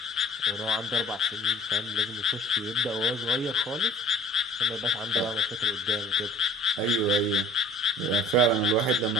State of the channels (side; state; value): both; normal; correlation 0.48